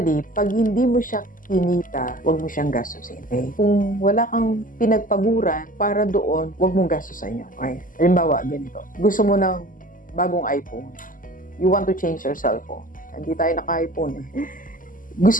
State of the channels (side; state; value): right; late; 0.39 ms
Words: pag hindi mo siya kinita, huwag mo siyang gastusin. Okay? Kung wala kang pinagpaguran para doon, huwag mong gastusin yun. Okay? Halimbawa, ganito. Gusto mo ng bagong iPhone. You want to change your cellphone. Hindi tayo naka-iPhone eh.